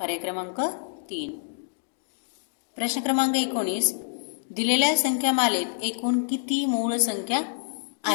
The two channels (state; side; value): silent; right; digital silence